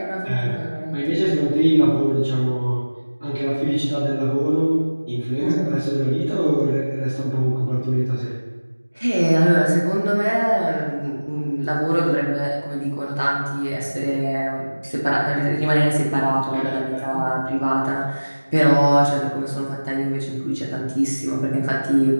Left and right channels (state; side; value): inverted; both; correlation -1.00